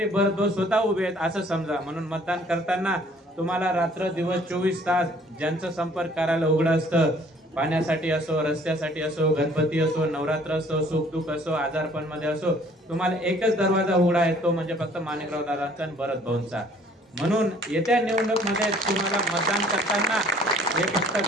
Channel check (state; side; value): normal; both; correlation 0.57